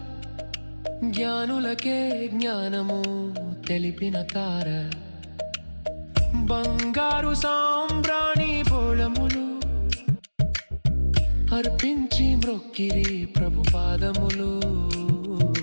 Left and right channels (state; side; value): inverted; both; correlation -1.00